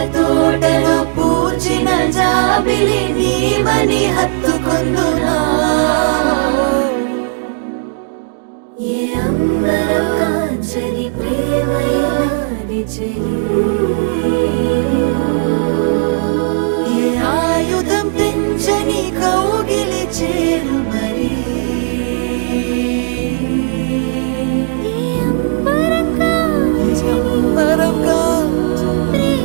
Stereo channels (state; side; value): silent; left; digital silence